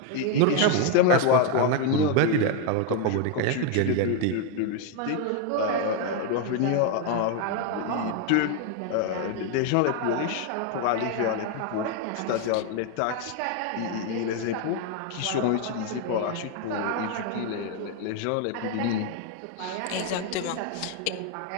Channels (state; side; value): different; both; correlation 0.01